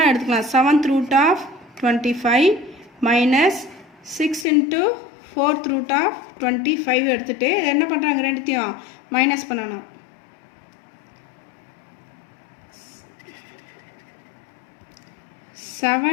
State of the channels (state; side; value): drops out; right; at 4.5 s